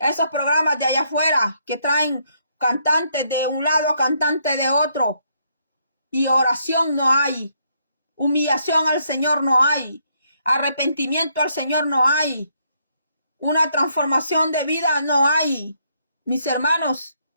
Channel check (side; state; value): both; inverted; correlation -0.73